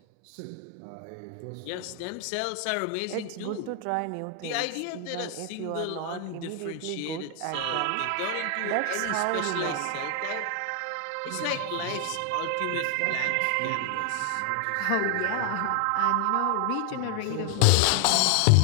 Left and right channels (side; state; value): both; different; correlation 0.00